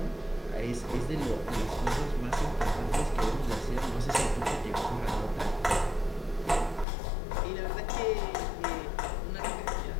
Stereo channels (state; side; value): drops out; right; at 6.9 s